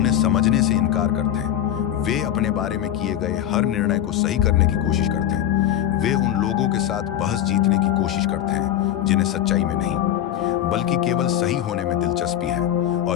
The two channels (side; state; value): right; quieter; 11.1 dB